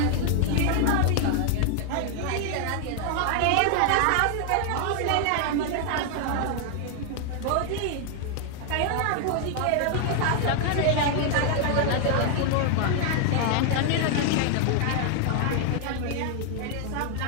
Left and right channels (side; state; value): both; different; correlation 0.00